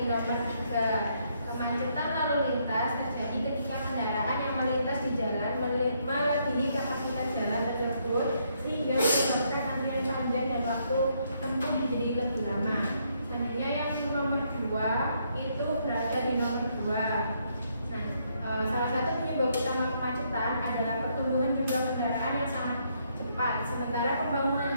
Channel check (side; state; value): both; inverted; correlation -0.73